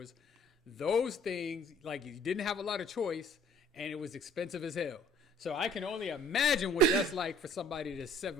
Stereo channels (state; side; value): normal; both; correlation 0.55